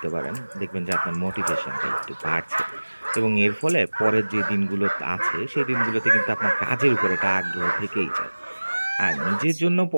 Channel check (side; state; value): both; inverted; correlation -1.00